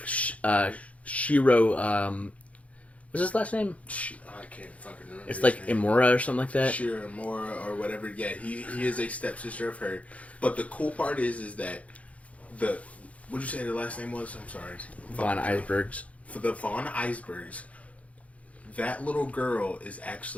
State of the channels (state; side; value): late; right; 0.066 ms